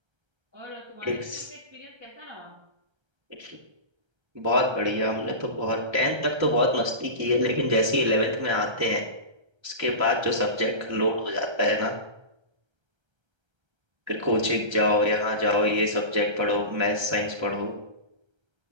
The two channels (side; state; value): left; late; 1.3 ms